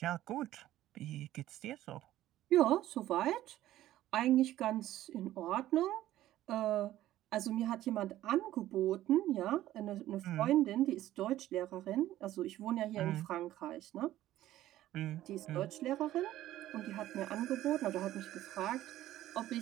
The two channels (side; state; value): left; quieter; 14.1 dB